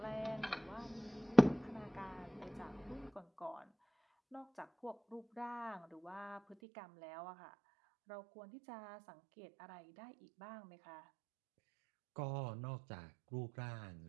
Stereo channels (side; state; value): left; drops out; at 6.6 s